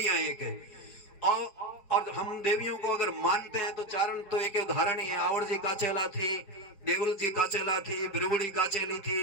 एक है। और हम देवियों को अगर मानते हैं तो चारण तो एक उदाहरण ही है। आवड़ जी काचेला थी, देवल जी काचेला थी, बिरबुड़ी काचेली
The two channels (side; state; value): right; late; 5.0 ms